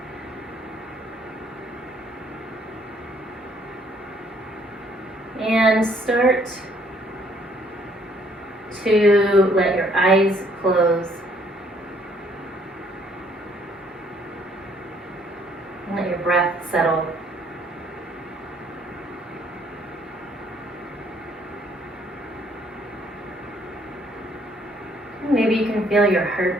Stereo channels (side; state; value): both; normal; correlation 0.64